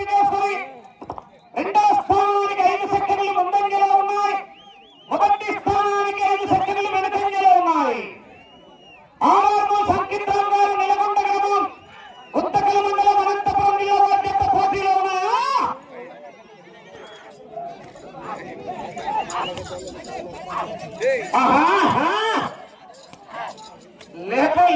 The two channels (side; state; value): both; identical; correlation 1.00